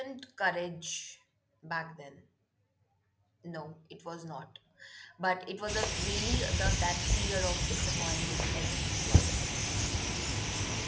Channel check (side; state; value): both; identical; correlation 1.00